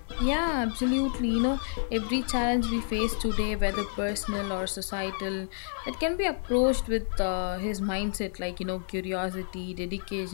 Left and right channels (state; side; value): silent; right; digital silence